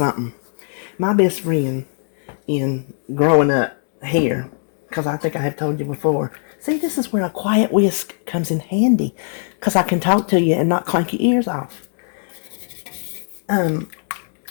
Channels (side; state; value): right; silent; digital silence